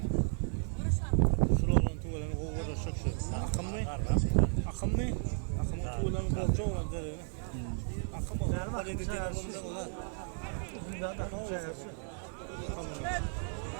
Şuranın tuğlanı kovada şakşı. Akım mı? Akım mı? Akımın tuğlanı bolca olan derine. Akım olan. Hadi dediğin olunca olan. Bundan da konuşuyoruz.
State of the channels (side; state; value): left; silent; 55 dB below the other